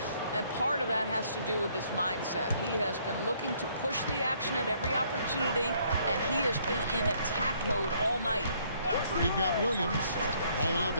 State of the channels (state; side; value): inverted; both; correlation -0.65